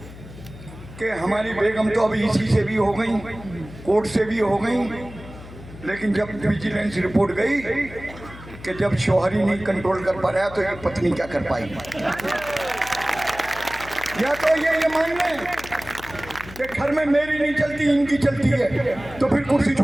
कि हमारी बेगम तो अभी इसी से भी हो गई, कोर्ट से भी हो गई, लेकिन जब विजिलेंस रिपोर्ट गई कि जब शौहर ही नहीं कंट्रोल कर पा रहा तो ये पत्नी क्या कर पाई। या तो ये मान लें कि घर में मेरी नहीं चलती, इनकी चलती है, तो फिर कुर्सी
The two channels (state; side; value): noise; left; hum, 16 dB below the sound